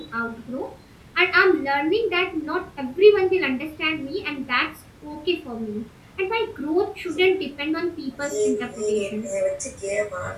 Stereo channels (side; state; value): both; identical; correlation 1.00